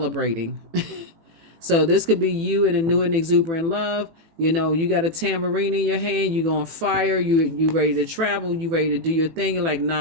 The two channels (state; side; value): late; left; 18 ms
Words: So this could be you in a new and exuberant love. You got a tambourine in your hand, you on fire, you ready to travel, you ready to do your thing. You're like,